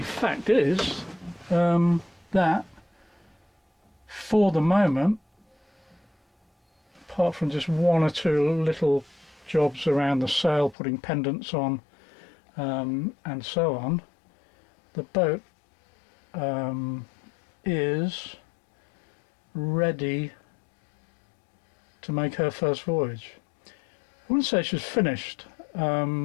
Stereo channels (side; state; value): right; drops out; at 10.8 s